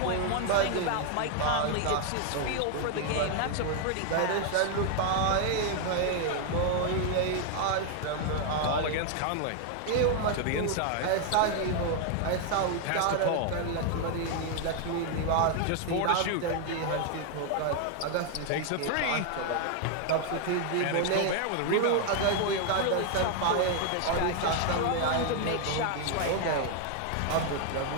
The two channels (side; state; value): both; different; correlation 0.00